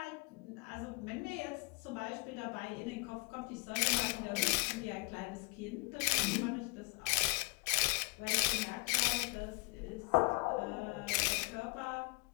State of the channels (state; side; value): quieter; right; 30.4 dB